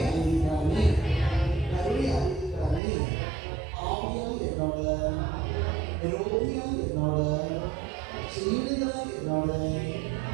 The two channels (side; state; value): left; drops out; at 2.8 s